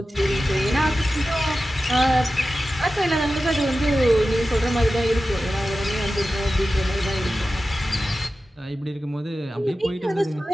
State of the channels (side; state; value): both; normal; correlation 0.94